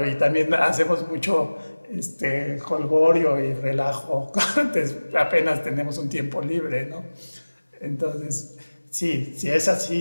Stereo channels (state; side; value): inverted; both; correlation -1.00